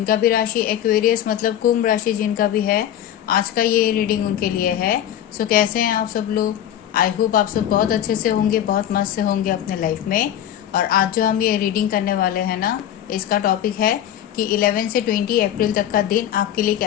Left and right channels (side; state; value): right; quieter; 10.9 dB